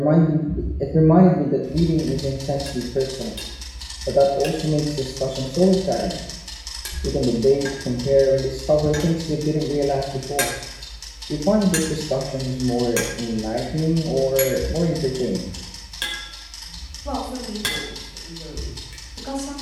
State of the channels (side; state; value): both; identical; correlation 1.00